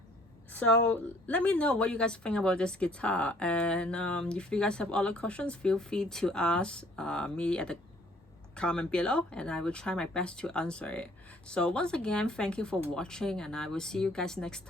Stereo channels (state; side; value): normal; both; correlation 0.58